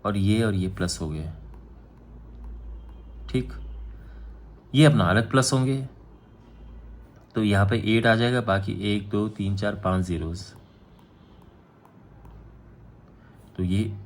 और ये प्लस हो गए, ठीक। ये अपना अलग प्लस होंगे, तो यहाँ पे 8 आ जाएगा, बाकी 1 2 3 4 5 zeros। तो ये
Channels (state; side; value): identical; both; correlation 1.00